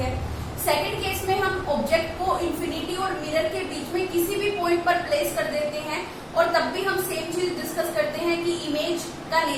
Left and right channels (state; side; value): identical; both; correlation 1.00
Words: सेकंड केस में हम ऑब्जेक्ट को इंफिनिटी और मिरर के बीच में किसी भी पॉइंट पर प्लेस कर देते हैं और तब भी हम सेम चीज डिस्कस करते हैं कि इमेज का